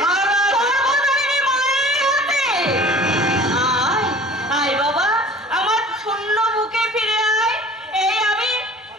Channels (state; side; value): normal; both; correlation 0.46